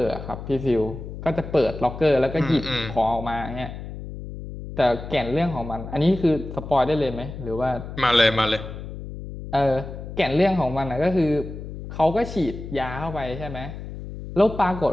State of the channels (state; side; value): noise; left; hum, 10 dB below the sound